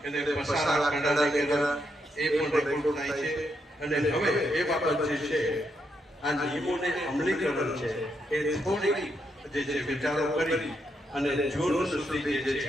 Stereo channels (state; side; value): normal; both; correlation 0.80